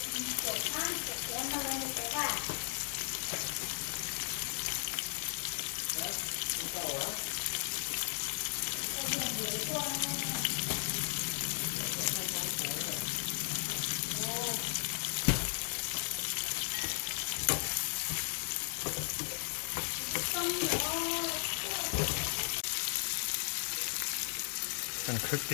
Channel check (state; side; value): silent; right; digital silence